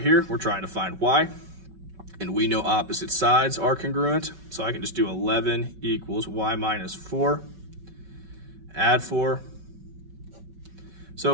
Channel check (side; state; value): left; late; 5.3 ms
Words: here, we're trying to find y, and we know opposite sides are congruent, so I can just do 11 equals y minus 4, add 4,